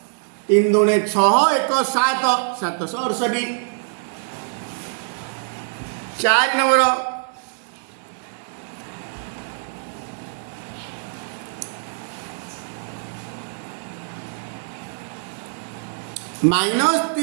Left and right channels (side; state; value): left; silent; digital silence